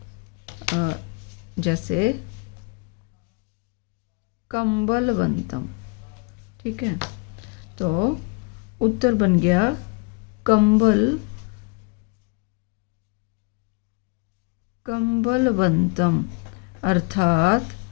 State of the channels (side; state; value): right; quieter; 32.8 dB